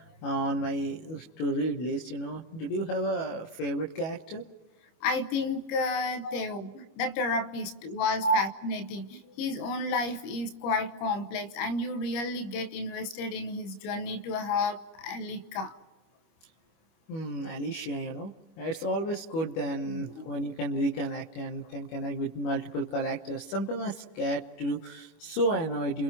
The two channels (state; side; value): late; right; 25 ms